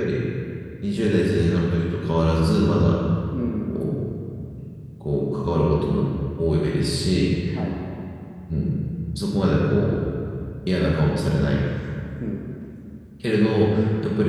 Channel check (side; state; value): both; identical; correlation 1.00